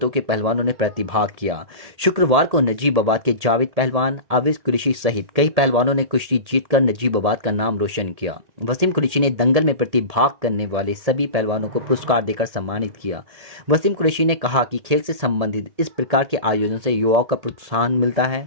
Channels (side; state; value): left; late; 1.8 ms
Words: के पहलवानों ने प्रतिभाग किया। शुक्रवार को नजीबाबाद के जावेद पहलवान, आविज कुरैशी सहित कई पहलवानों ने कुश्ती जीतकर नजीबाबाद का नाम रोशन किया। वसीम कुरैशी ने दंगल में प्रतिभाग करने वाले सभी पहलवानों को पुरस्कार देकर सम्मानित किया। वसीम कुरैशी ने कहा कि खेल से संबंधित इस प्रकार के आयोजन से युवाओं का प्रोत्साहन मिलता